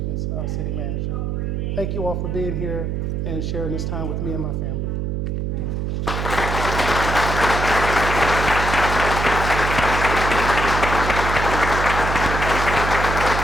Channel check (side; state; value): right; noise; hum, 1 dB below the sound